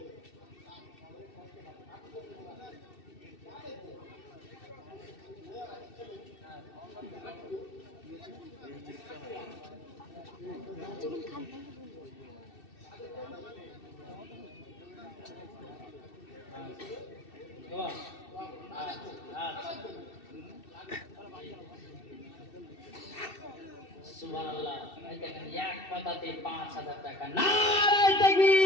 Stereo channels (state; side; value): late; right; 2.7 ms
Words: সুবহানাল্লাহ। এই দেখেন, এক কথাতে 5,000 টাকা। নারায়ে